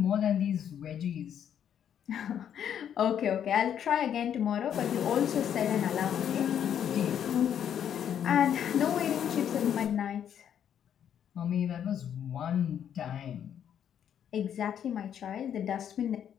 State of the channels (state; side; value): quieter; right; 9.2 dB